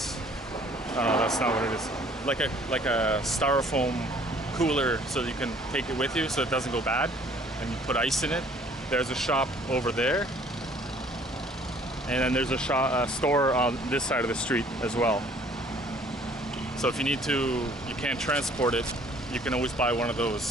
Oh no, that's not what it is. Like a styrofoam cooler, so you can take it with you, so it doesn't go bad, and you put ice in it. There's a shop over there, and then there's a store on this side of the street as well. So if you need to, you can't transport it, you can always buy one of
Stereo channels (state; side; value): normal; both; correlation 0.57